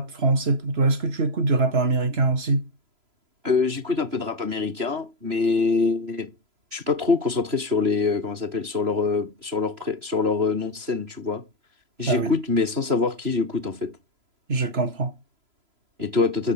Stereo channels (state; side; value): late; left; 3.0 ms